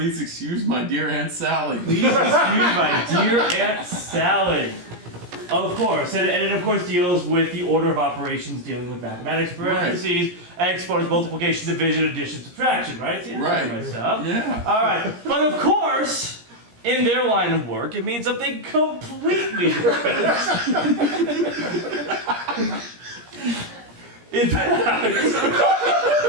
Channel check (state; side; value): late; left; 17 ms